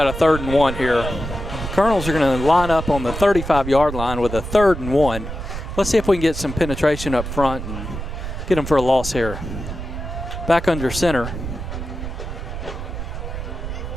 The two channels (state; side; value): noise; right; rumble, 7 dB below the sound